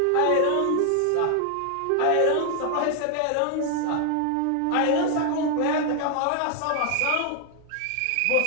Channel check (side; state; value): both; different; correlation 0.00